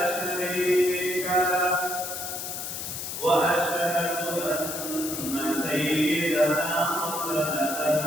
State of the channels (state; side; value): noise; left; hiss, 6 dB below the sound